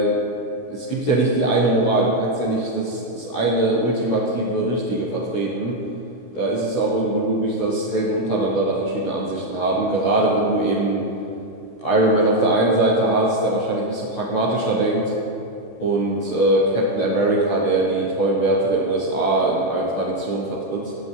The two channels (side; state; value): right; late; 16 ms